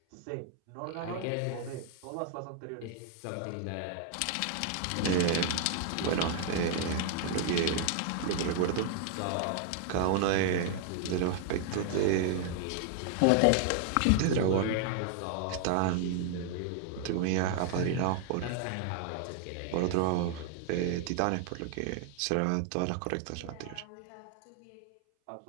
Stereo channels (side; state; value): both; different; correlation 0.00